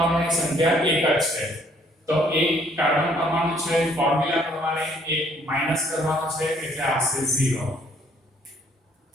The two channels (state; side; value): normal; both; correlation 0.64